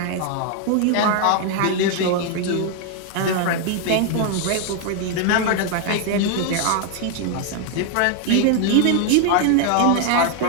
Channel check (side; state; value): both; different; correlation 0.00